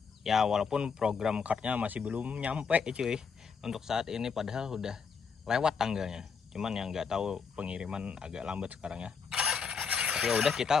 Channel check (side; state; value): right; quieter; 5.8 dB